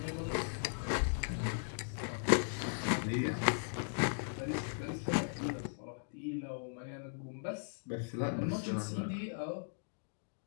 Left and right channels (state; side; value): silent; right; digital silence